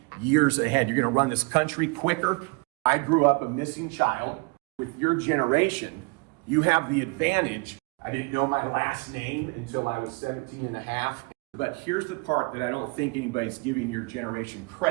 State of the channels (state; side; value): quieter; left; 30.0 dB